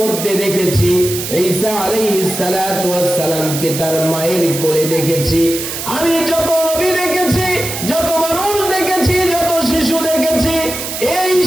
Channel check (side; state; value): right; noise; hiss, 6 dB below the sound